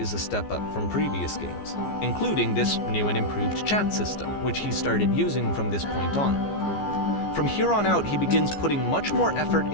a step up from previous games, including this new and improved chat system, which he started using from this point on. From here on out, he begins putting much more effort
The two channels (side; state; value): right; late; 14 ms